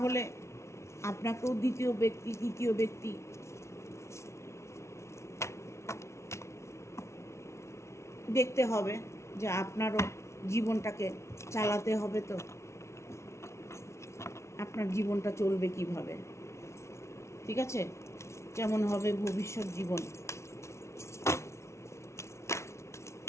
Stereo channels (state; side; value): late; right; 0.13 ms